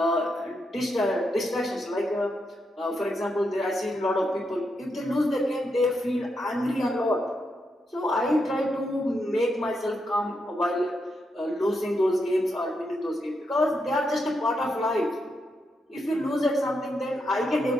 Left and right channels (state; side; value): normal; both; correlation 0.83